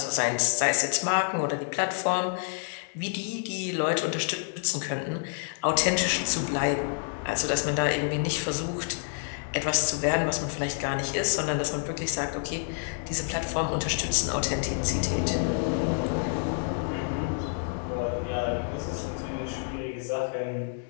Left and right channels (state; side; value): silent; right; digital silence